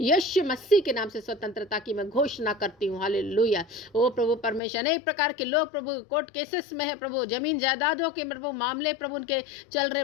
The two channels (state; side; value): drops out; right; at 4.6 s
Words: यीशु मसीह के नाम से स्वतंत्रता की मैं घोषणा करती हूँ। हालेलुया। ओ प्रभु परमेश्वर अनेक प्रकार के लोग प्रभु कोर्ट केसेस में है प्रभु, जमीन जायदादों के प्रभु मामले प्रभु उनके चल